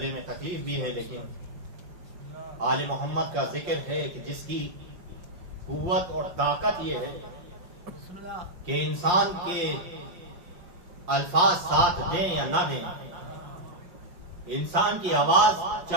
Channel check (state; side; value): late; left; 5.7 ms